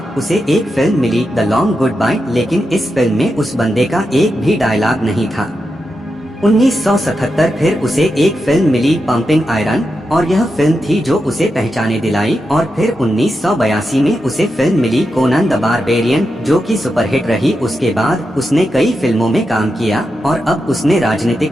उसे एक फिल्म मिली, द लॉन्ग गुड बाय। लेकिन इस फिल्म में उस बंदे का एक भी डायलॉग नहीं था। 1977 फिर उसे एक फिल्म मिली, पंपिंग आयरन, और यह फिल्म थी जो उसे पहचाने दिलाई। और फिर 1982 में उसे फिल्म मिली कोनन द बारबेरियन, जो कि सुपरहिट रही। उसके बाद उसने कई फिल्मों में काम किया और अब उसने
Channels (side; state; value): both; normal; correlation 0.88